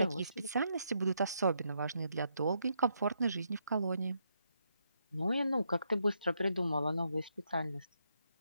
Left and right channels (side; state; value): both; inverted; correlation -0.78